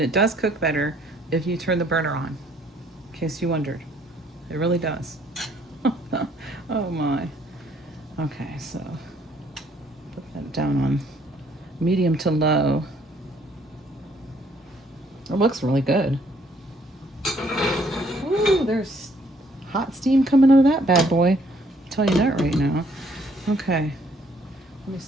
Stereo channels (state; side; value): normal; both; correlation 0.64